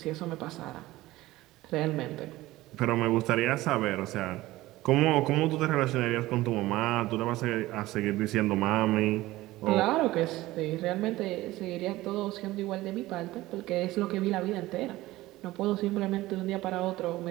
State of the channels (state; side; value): quieter; left; 17.6 dB